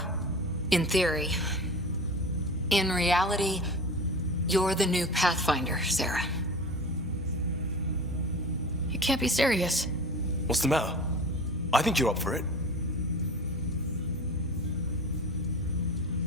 In theory. In reality, you're the new Pathfinder, Sarah. You can't be serious. What's the matter? I think you're up for it.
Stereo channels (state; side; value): normal; both; correlation 0.35